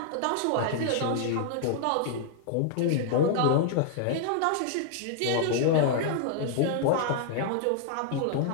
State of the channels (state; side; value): different; both; correlation -0.01